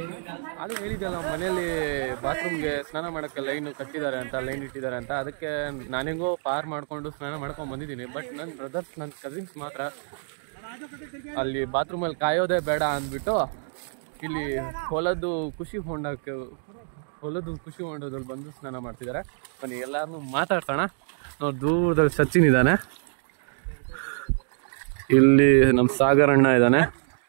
ಅದು ಹೇಳಿದ್ದಲ್ಲ ಮನೇಲಿ ಬಾತ್ರೂಮ್ಗೆ ಸ್ನಾನ ಮಾಡೋಕ್ಕೆ ಲೈನ್ ಕಟ್ಟಿದ್ದಾರೆ ಅಂತ, ಲೈನ್ ಇಟ್ಟಿದ್ದಾರೆ ಅಂತ. ಅದಕ್ಕೆ ನಾನೆಂಗೋ ಪಾರ್ ಮಾಡಿಕೊಂಡು ಸ್ನಾನ ಮಾಡ್ಕೊಂಡು ಬಂದಿದ್ದೀನಿ. ಬಟ್ ನನ್ನ ಬ್ರದರ್ಸ್, ನನ್ನ ಕಸಿನ್ಸ್ ಮಾತ್ರ ಅಲ್ಲಿ ಬಾತ್ರೂಮಲ್ಲಿ ಕಾಯೋದೇ ಬೇಡ ಅಂದ್ಬಿಟ್ಟು ಇಲ್ಲಿ ಹೊಲದ್ದು ಖುಷಿ ಹೊಂಡದಲ್ಲಿ ಬಂದು ಸ್ನಾನ ಮಾಡ್ತಿದ್ದಾರೆ. ಬನ್ನಿ ಎಲ್ಲಾರನ್ನೂ ಮಾತಾಡ್ಸೋಣ. ನಾವು ದೂರದಲ್ಲಿ ಸಚಿನ್ ಇದ್ದಾನೆ, ಇಲ್ಲಿ ನಮ್ಮ ಸಾಗರ್ ಅಣ್ಣ ಇದ್ದಾನೆ,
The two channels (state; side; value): silent; left; 57 dB below the other